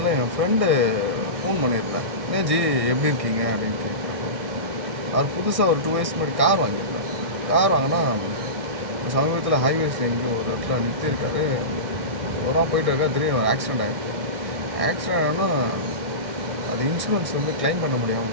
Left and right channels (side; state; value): left; late; 2.2 ms